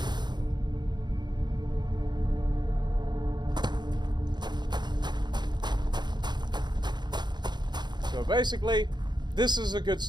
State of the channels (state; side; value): late; left; 0.21 ms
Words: So basically, this is a good